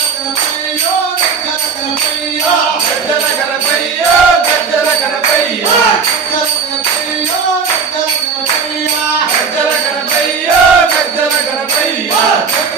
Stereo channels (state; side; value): quieter; left; 5.5 dB